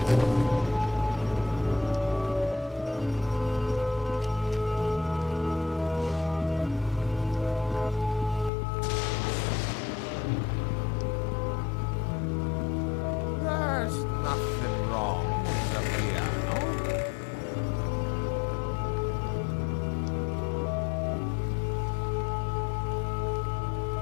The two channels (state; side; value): drops out; right; at 8.5 s